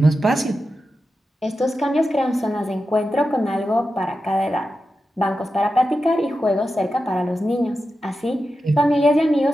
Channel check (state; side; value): normal; both; correlation 0.91